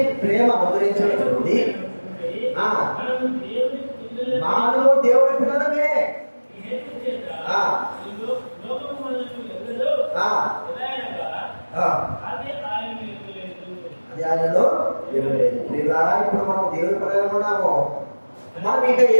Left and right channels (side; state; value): both; inverted; correlation -1.00